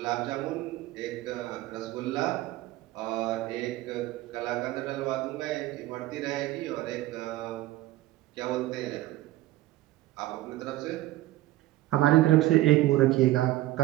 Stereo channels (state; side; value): quieter; left; 16.6 dB